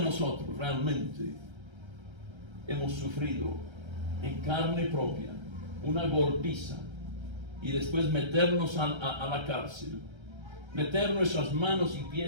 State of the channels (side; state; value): left; late; 1.3 ms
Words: realmente hemos sufrido en carne propia una golpiza y después meternos a la cárcel, meter nuestras manos y